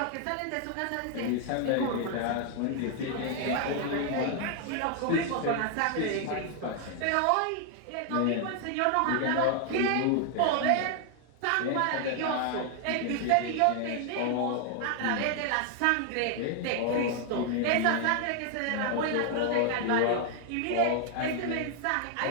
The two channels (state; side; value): different; both; correlation 0.00